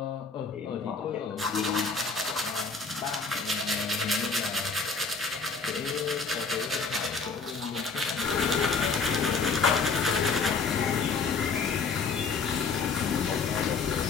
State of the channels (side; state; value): right; quieter; 4.8 dB